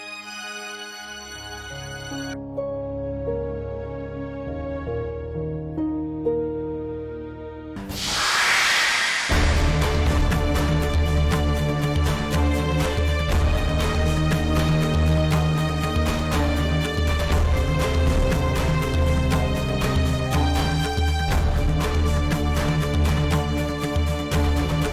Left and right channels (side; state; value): both; identical; correlation 1.00